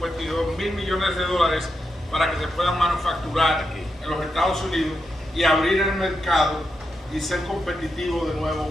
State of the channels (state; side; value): normal; both; correlation 0.85